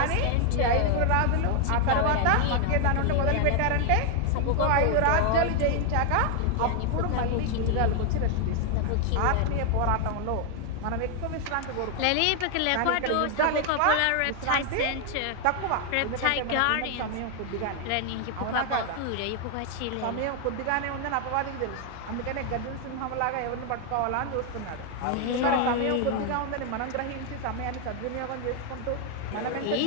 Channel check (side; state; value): both; different; correlation 0.00